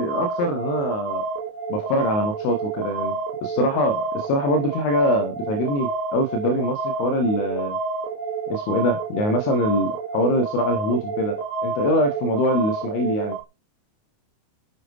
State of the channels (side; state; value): right; late; 28 ms